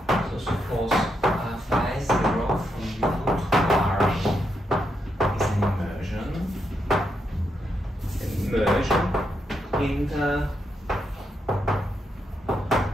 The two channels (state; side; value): normal; both; correlation 0.81